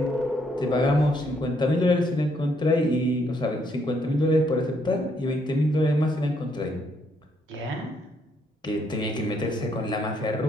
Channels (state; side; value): normal; both; correlation 0.72